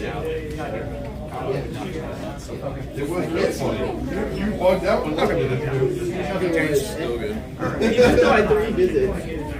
out. It was good for you. You bugged out when looking at it. Still good. Even though I had 3 visits.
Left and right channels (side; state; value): both; identical; correlation 1.00